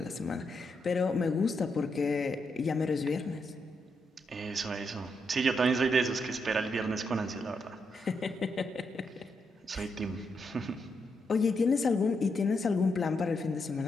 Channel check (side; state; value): both; normal; correlation 0.82